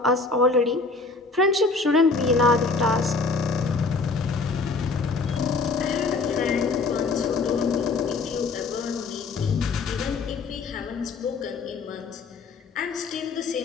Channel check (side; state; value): right; quieter; 4.0 dB